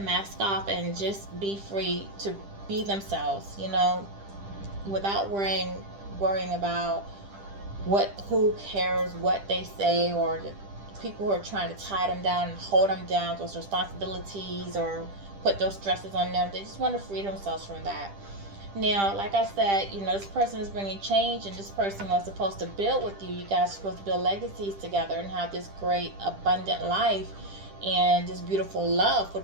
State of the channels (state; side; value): late; left; 10 ms